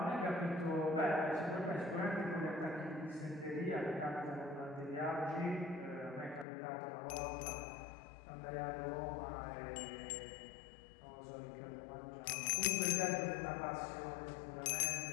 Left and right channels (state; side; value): drops out; right; at 6.5 s